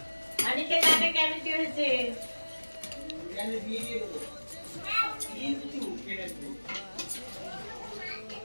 দাঁতে ক্যাভিটি হয়েছে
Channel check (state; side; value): inverted; both; correlation -1.00